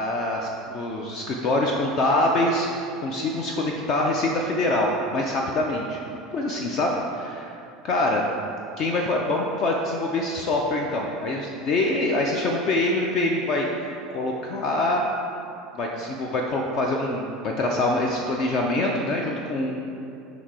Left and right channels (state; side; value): normal; both; correlation 0.34